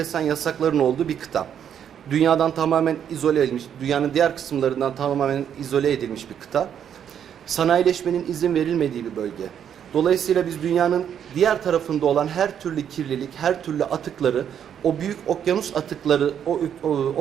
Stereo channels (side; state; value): left; quieter; 8.9 dB